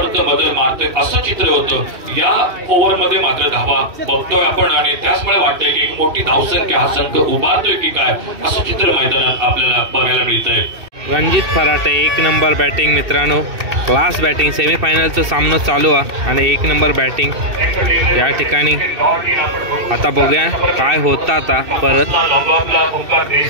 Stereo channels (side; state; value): left; late; 2.6 ms